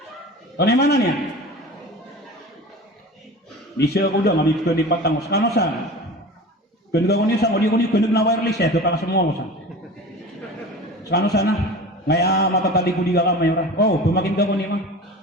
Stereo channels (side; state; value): both; normal; correlation 0.35